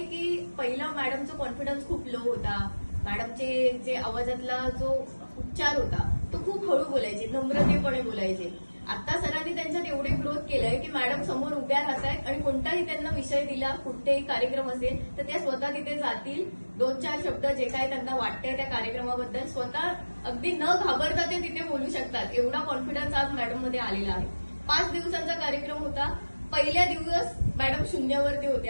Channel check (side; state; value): both; inverted; correlation -1.00